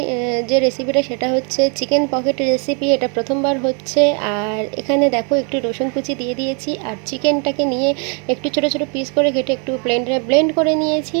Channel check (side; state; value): left; quieter; 37.0 dB